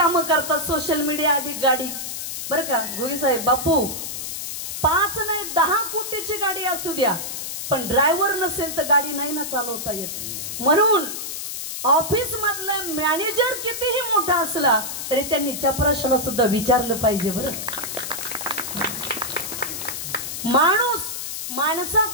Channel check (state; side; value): noise; left; hiss, 6 dB below the sound